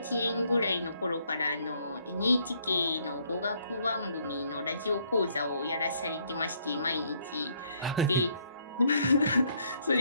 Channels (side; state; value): both; inverted; correlation -0.68